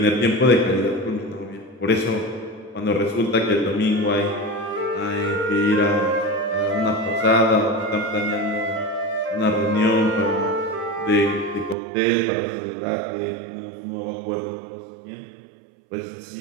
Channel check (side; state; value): left; drops out; at 11.8 s